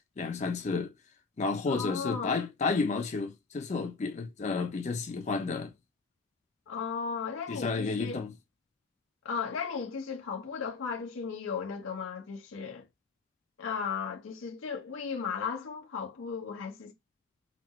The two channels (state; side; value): quieter; right; 4.4 dB